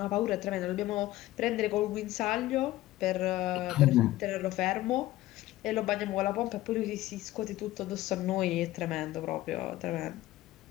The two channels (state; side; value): quieter; right; 16.1 dB